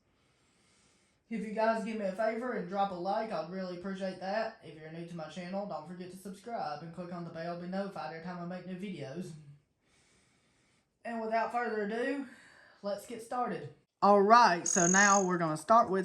If you guys give me a favor and drop a like, I'd really appreciate that. If you're new to my channel, don't forget to subscribe and click on the bell to be notified every time I make new videos. And without further ado, let's get started. Alright, so now we're going to start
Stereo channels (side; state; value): both; identical; correlation 1.00